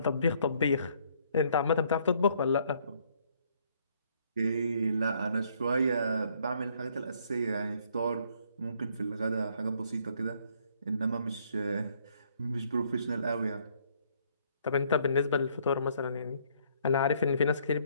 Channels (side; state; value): both; inverted; correlation -0.66